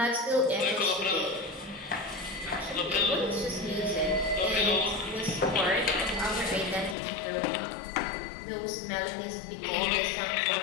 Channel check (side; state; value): right; drops out; at 7.0 s